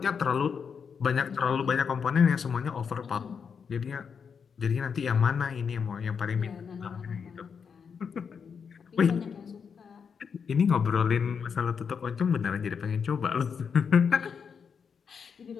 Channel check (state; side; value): quieter; right; 6.4 dB